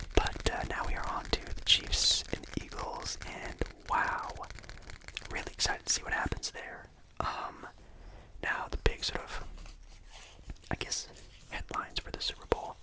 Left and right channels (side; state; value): both; identical; correlation 1.00